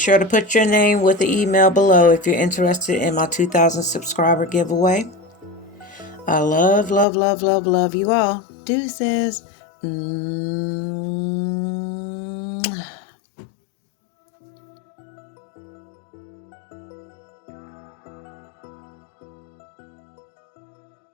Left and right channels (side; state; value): right; drops out; at 7.1 s